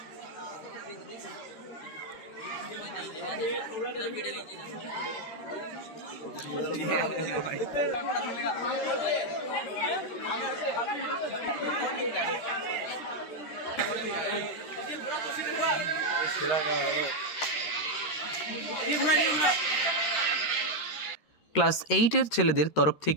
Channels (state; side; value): late; right; 13 ms